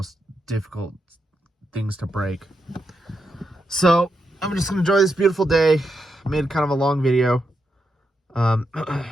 difficult things to break. So I'm just gonna enjoy this beautiful day. I made kind of a long video. I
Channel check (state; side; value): normal; both; correlation 0.84